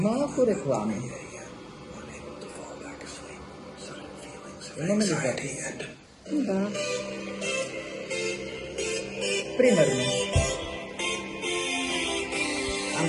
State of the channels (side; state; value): both; identical; correlation 1.00